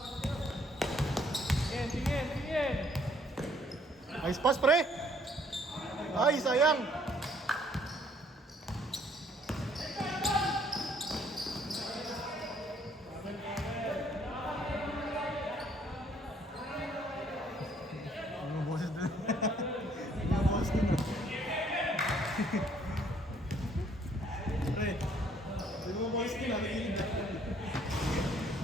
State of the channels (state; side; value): normal; both; correlation 0.63